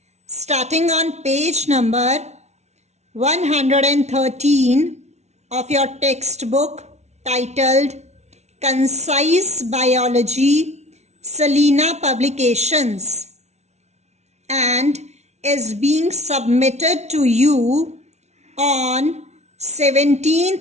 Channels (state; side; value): late; left; 0.32 ms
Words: starting on page number 113 of your textbook titled Concise Biology, Selena Publications, and is being submitted to you on